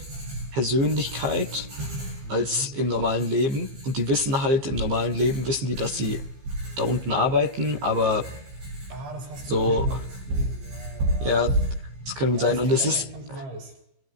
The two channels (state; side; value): late; left; 15 ms